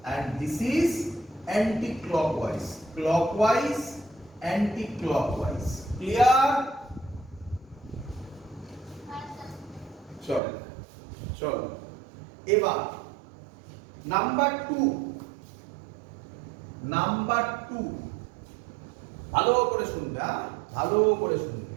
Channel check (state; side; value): drops out; left; at 10.4 s